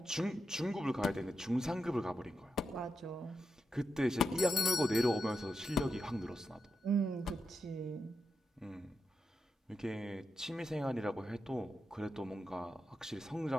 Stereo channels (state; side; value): normal; both; correlation 0.87